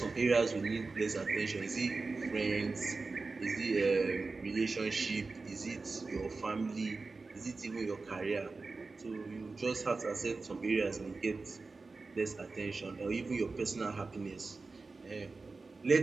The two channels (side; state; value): left; quieter; 3.9 dB